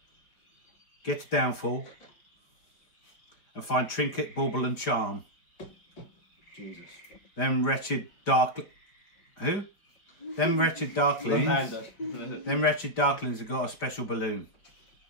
Get to Downfall. And find Trinket, Bauble and Charm. Jesus. Them wretched dark... Who? Them wretched darklings. Left-hander. Them wretched darklings have got a special balloon.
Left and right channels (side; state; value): right; late; 4.9 ms